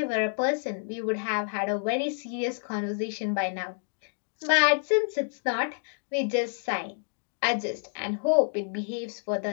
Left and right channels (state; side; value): silent; right; digital silence